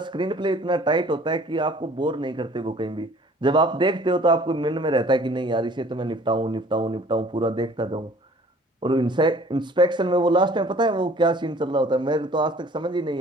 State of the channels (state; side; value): normal; both; correlation 0.52